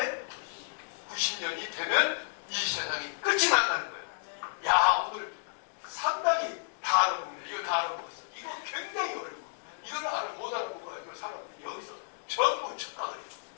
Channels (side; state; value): right; silent; digital silence